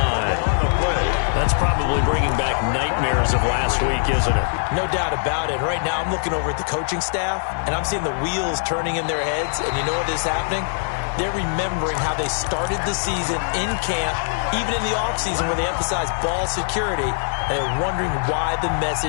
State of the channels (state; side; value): silent; right; digital silence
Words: That's probably bringing back nightmares of last week, isn't it? No doubt about it. Right now I'm looking over at the coaching staff, and I'm seeing the wheels turning in their heads. And you know what is happening? They're remembering how they started the season in camp, even in the offseason where they emphasized ball security, and they're wondering why the